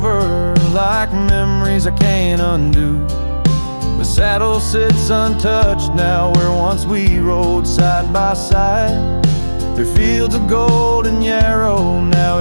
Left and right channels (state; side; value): inverted; both; correlation -1.00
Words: like memories I can't undo. The saddle sits untouched now where once we rode side by side. Through fields of golden yarrow, now